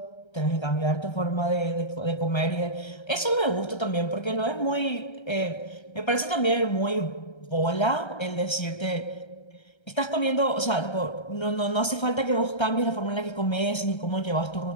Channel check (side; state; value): right; late; 1.3 ms